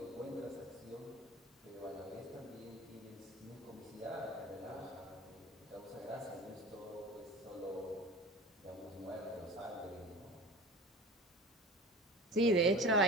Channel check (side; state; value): both; normal; correlation 0.36